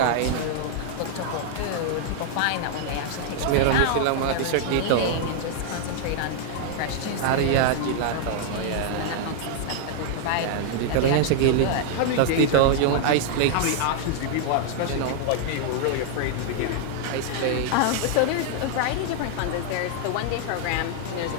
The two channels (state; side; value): different; both; correlation 0.00